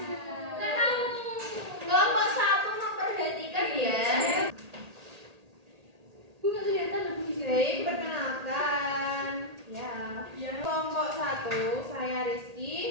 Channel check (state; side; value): late; left; 1.8 ms